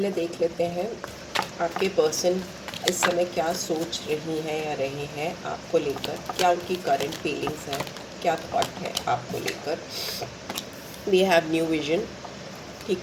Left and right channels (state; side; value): identical; both; correlation 1.00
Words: देख लेते हैं आपके पर्सन इस समय क्या सोच रही हैं या रहे हैं आपको लेकर, क्या उनकी करंट फीलिंग्स हैं, क्या थॉट है आपको लेकर। We have new vision.